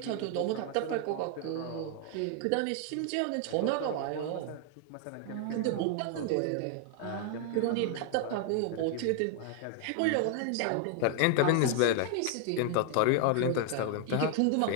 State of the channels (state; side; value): different; both; correlation 0.00